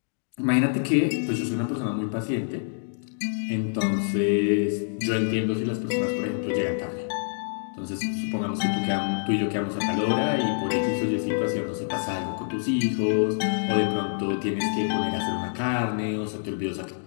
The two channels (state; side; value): silent; right; digital silence